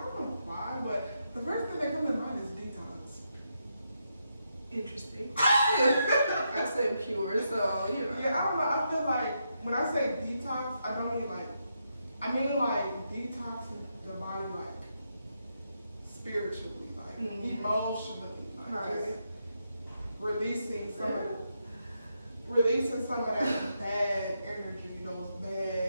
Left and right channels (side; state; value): both; inverted; correlation -0.82